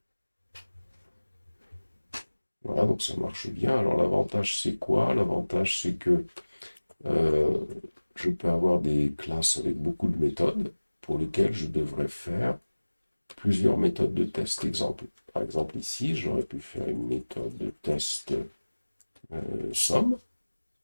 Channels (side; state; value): both; inverted; correlation -1.00